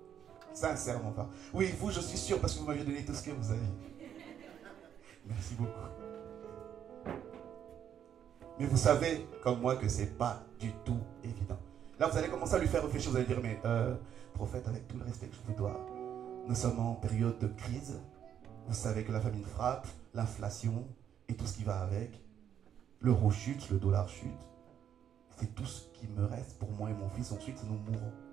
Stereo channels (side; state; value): left; quieter; 9.2 dB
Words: Sincèrement parlant. Oui, vous, je suis sûr parce que vous m'avez donné tout ce que vous avez. Merci beaucoup. Mais vous savez, comme moi, que ce n'est pas du tout évident. Là, vous allez commencer à lui faire réfléchir. Vous allez dire, mais prophète, avec tout le respect que je vous dois, nous sommes en période de crise. Vous savez que la famine frappe, l'inflation et tout ce qui va avec. L'euro chute, le dollar chute. C'est tout ce qui me reste pour moi et mon fils. Ensuite, nous mourrons.